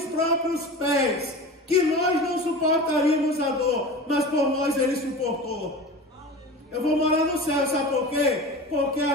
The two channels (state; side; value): normal; both; correlation 0.33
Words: próprios pés. Que nós não suportaríamos a dor, mas por nós ele suportou. Eu vou morar no céu, sabe por quê? Porque